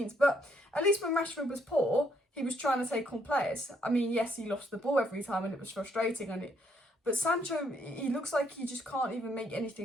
But at least when Rashford was poor, he was trying to take on players. I mean, yes, he lost the ball every time and it was frustrating, but Sancho, he looks like he just can't even make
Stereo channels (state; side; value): normal; both; correlation 0.71